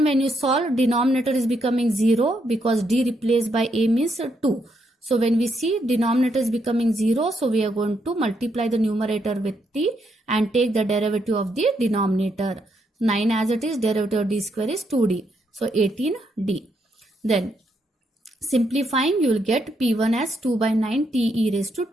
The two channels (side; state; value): both; normal; correlation 0.77